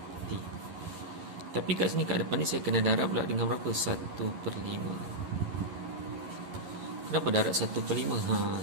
t. Tapi kat sini kat depan ni saya kena darab pula dengan berapa? 1/5. Kenapa darab 1/5?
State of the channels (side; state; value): left; late; 11 ms